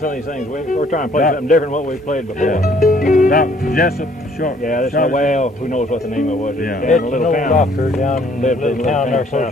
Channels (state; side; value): normal; both; correlation 0.61